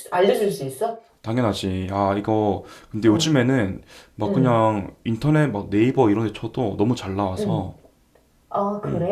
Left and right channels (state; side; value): identical; both; correlation 1.00